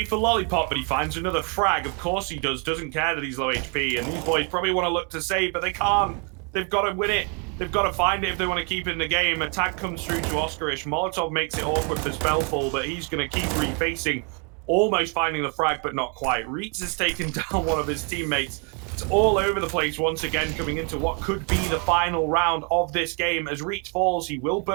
for Lollipop, but he finds another frag. Of course he does. Doesn't care that he's low HP. And these boys probably want to look to save, but they can't. They've got to win it. They've got to find it if they want to keep it in the game. Attack comes through to Oskarish. Molotov makes it awkward for Spellful, but he's going to keep refacing. Almost finding the frag, but not quite. Reitz has taken down one of his teammates. It's all over the place once again, coming into what could be the final round of this game. As Reitz falls, he will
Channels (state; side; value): quieter; left; 37.1 dB